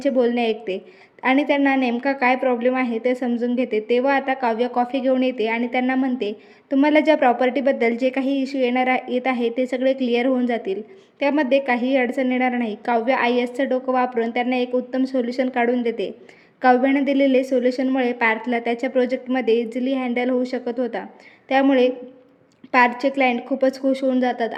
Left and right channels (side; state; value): both; identical; correlation 1.00